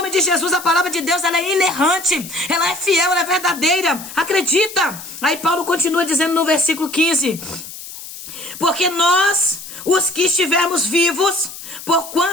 de Jesus, a palavra de Deus, ela é inerrante, ela é fiel, ela é verdadeira. Acredita. Aí Paulo continua dizendo no versículo 15: porque nós, os que estivermos vivos,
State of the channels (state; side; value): noise; left; hiss, 13 dB below the sound